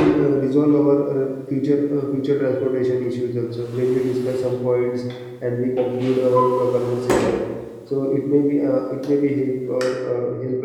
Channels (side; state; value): both; identical; correlation 1.00